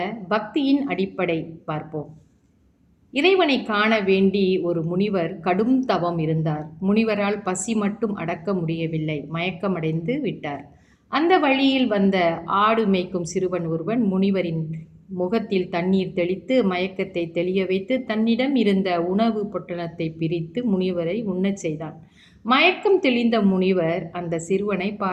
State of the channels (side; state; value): both; identical; correlation 1.00